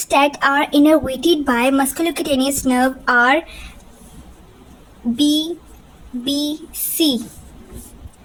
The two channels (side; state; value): both; identical; correlation 1.00